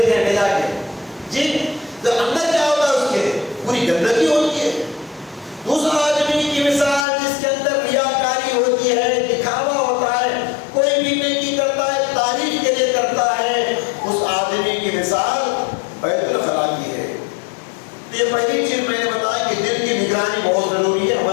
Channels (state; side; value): drops out; right; at 7.1 s